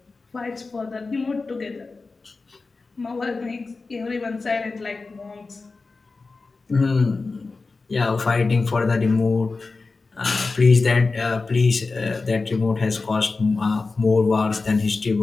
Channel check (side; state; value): right; quieter; 3.9 dB